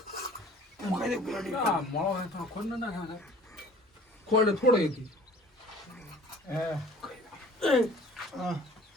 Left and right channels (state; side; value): normal; both; correlation 0.49